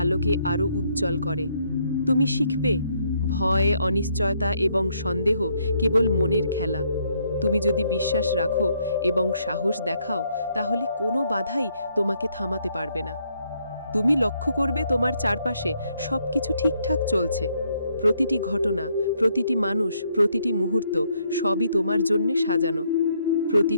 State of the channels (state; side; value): inverted; both; correlation -0.72